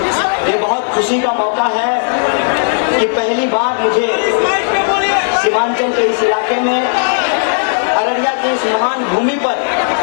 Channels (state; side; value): silent; right; digital silence